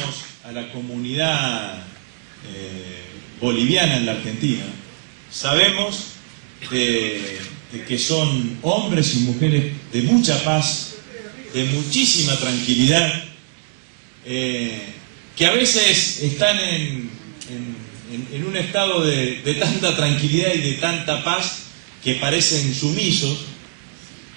a la comunidad boliviana en la Argentina, sabemos de que son hombres y mujeres de mucha paz, de muchísima tranquilidad, que a veces están en un estado de tanta tranquilidad y de tanta paz que parecen sumisos,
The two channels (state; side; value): silent; left; 65 dB below the other